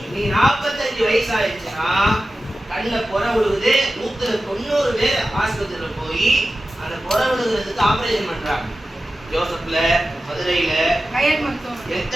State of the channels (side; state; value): both; normal; correlation 0.94